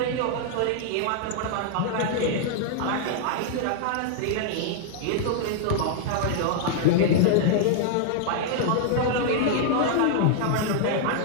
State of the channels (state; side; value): different; both; correlation -0.01